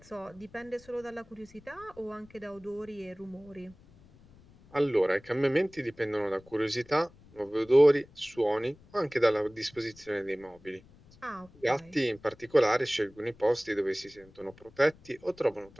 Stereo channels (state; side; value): noise; left; rumble, 25 dB below the sound